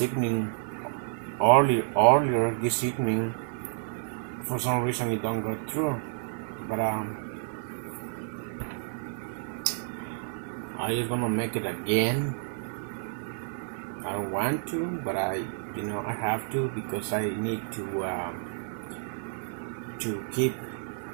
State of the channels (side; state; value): left; silent; 58 dB below the other